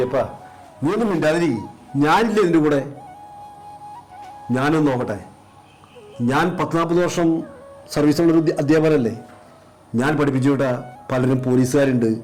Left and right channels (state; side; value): identical; both; correlation 1.00